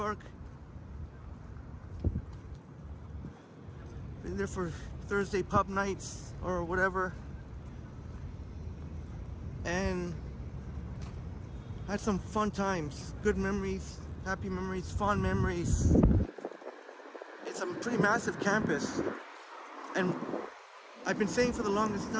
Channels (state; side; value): identical; both; correlation 1.00